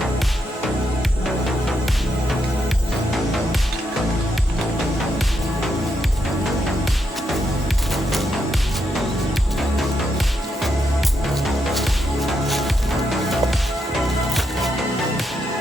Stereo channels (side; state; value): both; normal; correlation 0.80